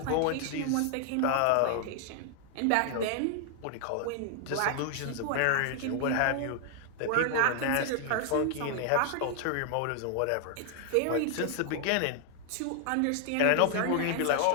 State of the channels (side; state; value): both; different; correlation 0.00